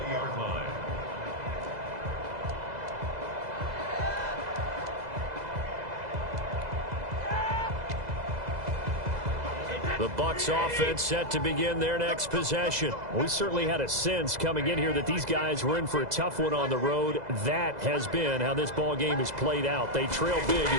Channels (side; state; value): left; late; 2.0 ms